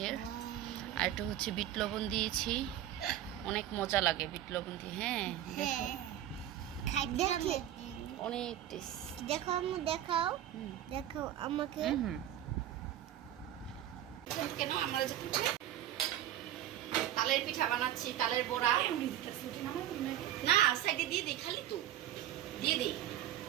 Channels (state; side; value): quieter; left; 11.9 dB